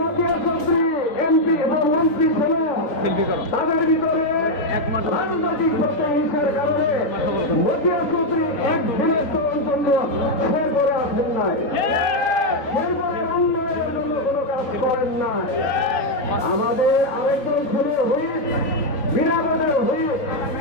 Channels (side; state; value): right; late; 3.9 ms